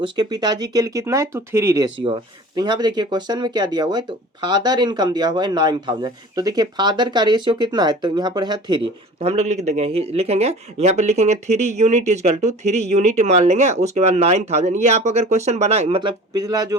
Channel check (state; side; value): normal; both; correlation 0.42